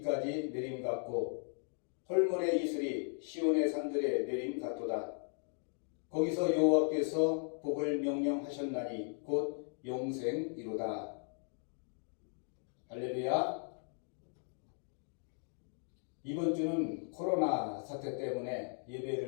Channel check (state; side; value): silent; right; 53 dB below the other